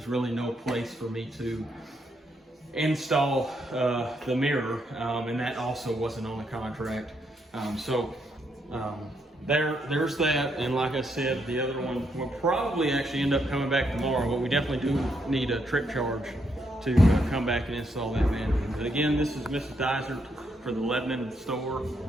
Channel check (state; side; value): normal; both; correlation 0.77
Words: really no place for me to install the mirror, and that also wasn't on the contract. There's that, and like I said, the other one will probably actually end up coming back tomorrow, but we definitely do need a trip charge to come back and install that vanity. But again, this is Mrs. Dysert for the Lebanon store.